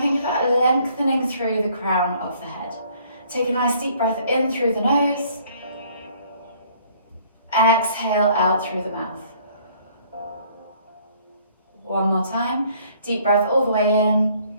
about lengthening through the crown of the head. Take a nice deep breath in through the nose. Exhale out through the mouth. One more time. Deep breath all the way in.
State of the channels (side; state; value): both; inverted; correlation -0.59